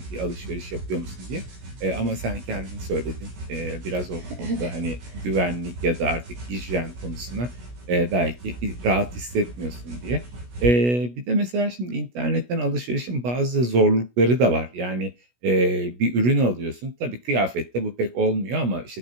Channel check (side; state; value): left; late; 16 ms